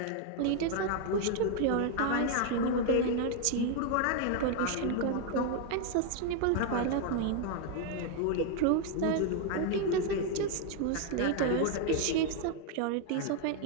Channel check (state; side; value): different; both; correlation 0.00